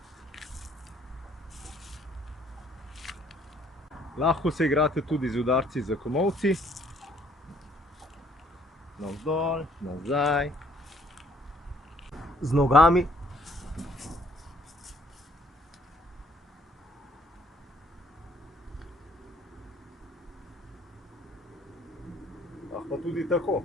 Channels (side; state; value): both; normal; correlation 0.62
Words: Lahko se igrate tudi z udarci za komolci. Navzdol, nazaj. Z nogami. Lahko tudi tako.